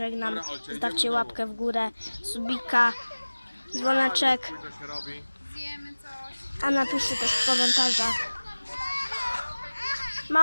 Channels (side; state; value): both; inverted; correlation -1.00